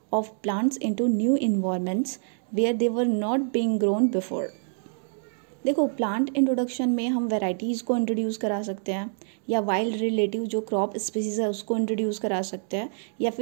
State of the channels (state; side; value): silent; left; digital silence